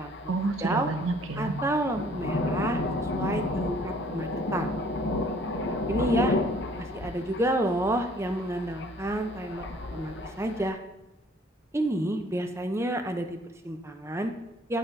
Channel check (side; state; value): both; normal; correlation 0.58